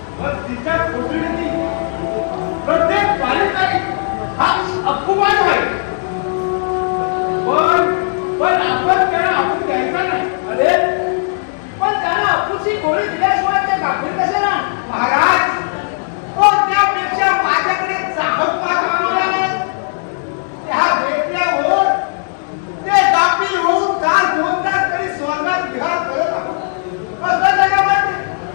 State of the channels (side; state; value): right; silent; digital silence